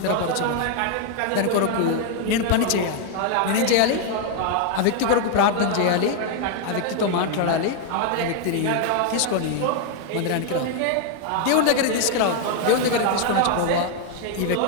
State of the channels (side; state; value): both; different; correlation 0.00